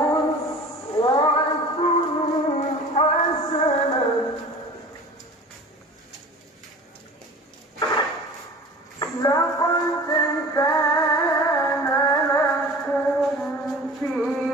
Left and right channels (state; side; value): normal; both; correlation 0.40